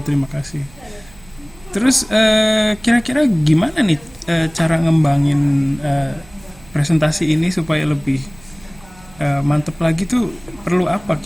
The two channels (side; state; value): right; noise; hum, 24 dB below the sound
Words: terima kasih. Terus kira-kira gimana nih cara ngembangin presentasi ini supaya lebih mantep lagi tuh, perlu apa